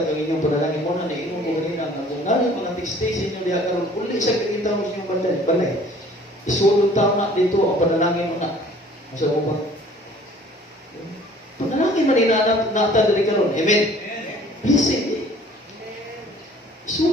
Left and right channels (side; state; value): both; normal; correlation 0.52